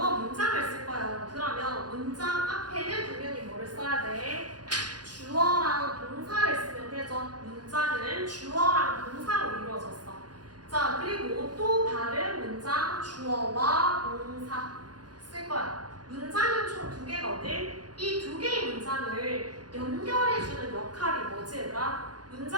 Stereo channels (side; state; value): left; late; 0.69 ms